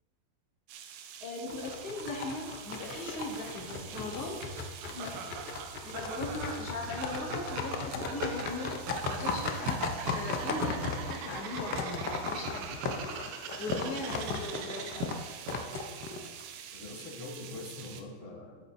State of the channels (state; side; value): late; left; 23 ms